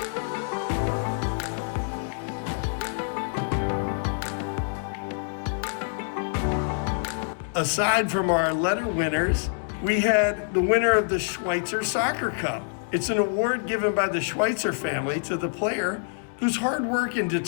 Aside from our letter winners, we had the winner of the Schweitzer Soccer Cup. It's an award given by the Schweitzer family to the player whose hard work and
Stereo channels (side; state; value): right; silent; digital silence